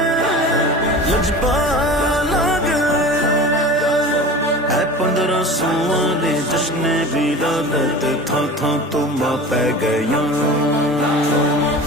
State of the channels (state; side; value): normal; both; correlation 0.36